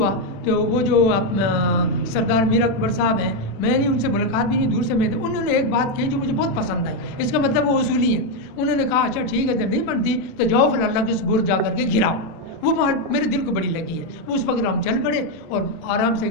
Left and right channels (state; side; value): late; right; 36 ms